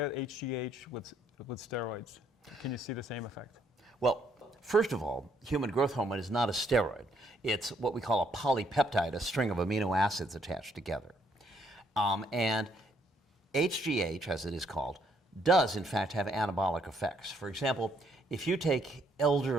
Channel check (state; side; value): normal; both; correlation 0.70